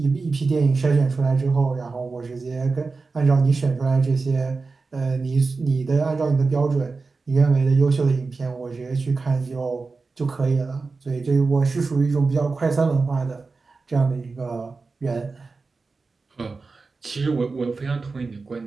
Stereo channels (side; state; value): left; quieter; 4.1 dB